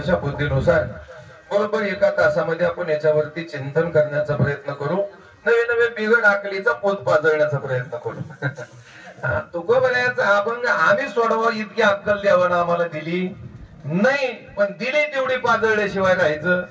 बुद्धीनुसार बरोबर 1 तासामध्ये आपण याच्यावरती चिंतन करण्याचा प्रयत्न करू. नवे नवे बिघड आकलीचा पोत पाजळण्याचा प्रयत्न करू. तुकोबाऱ्याचा अभंग आम्ही सोडवा इतकी अक्कल देवानं आम्हाला दिली नाही, पण दिली तेवढी पाजळल्याशिवाय राहायचं.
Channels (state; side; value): identical; both; correlation 1.00